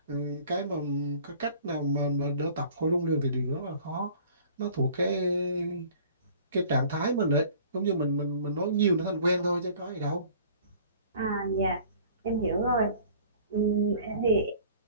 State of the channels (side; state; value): both; inverted; correlation -0.50